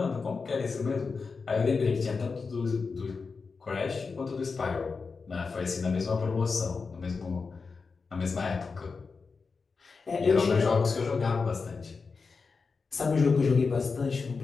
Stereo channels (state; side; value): quieter; right; 4.7 dB